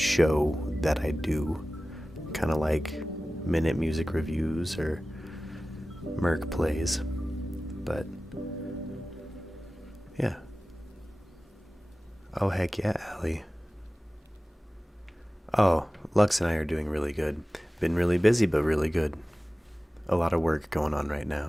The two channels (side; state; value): both; normal; correlation 0.96